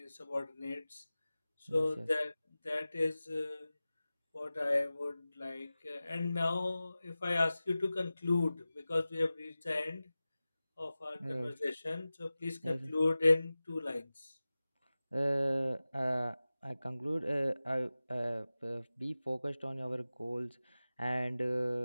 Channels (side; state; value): both; inverted; correlation -0.96